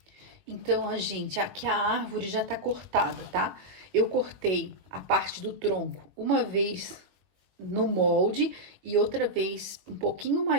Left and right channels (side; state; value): left; late; 21 ms